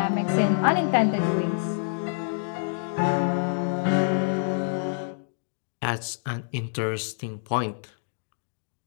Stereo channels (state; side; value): silent; right; digital silence